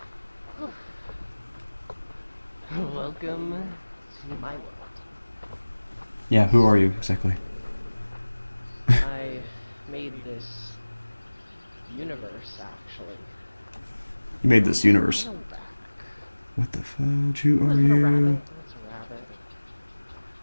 Welcome to my world. Yeah, who are you exactly? I made this universe, actually. You made this universe. A little back. What the fudge? Who are Is that a rabbit? you? That's a rabbit.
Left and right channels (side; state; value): both; inverted; correlation -1.00